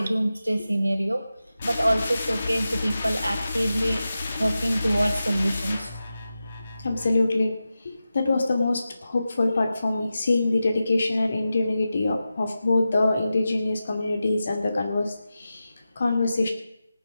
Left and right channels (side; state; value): both; inverted; correlation -0.93